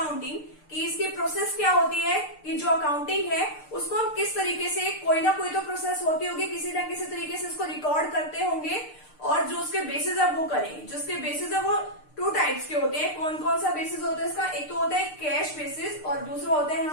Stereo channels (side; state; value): right; late; 6.6 ms